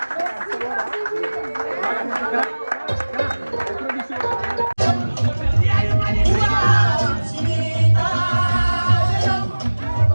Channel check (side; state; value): both; inverted; correlation -1.00